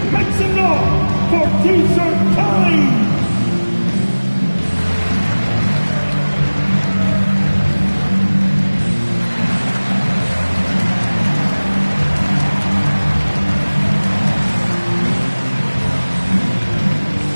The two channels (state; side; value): inverted; both; correlation -1.00